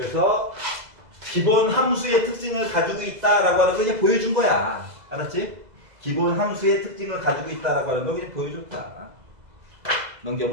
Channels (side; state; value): left; late; 2.0 ms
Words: 기본 함수의 특징을 가지고 있다라고 하는 거 이제 보여준 거야. 알았지? 기본 함수의 특징을 가지고 있다라고 하는 거 그냥 보여줬다.